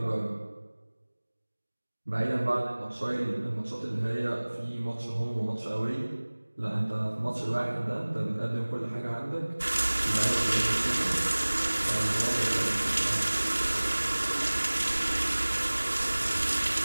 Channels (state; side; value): inverted; both; correlation -1.00